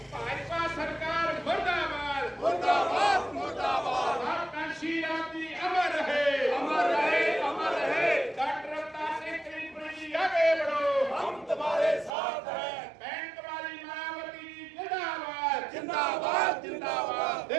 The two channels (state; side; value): drops out; left; at 12.1 s